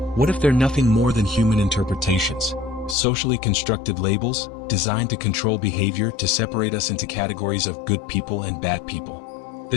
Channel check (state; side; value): drops out; right; at 3.0 s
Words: What if they're nothing more than human interpretations, socially constructed labels, designed to control behavior, to separate us into categories of good people and bad people?